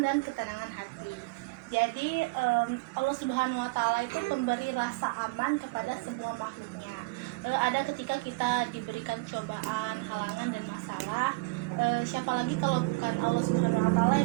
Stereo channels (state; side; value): quieter; left; 26.3 dB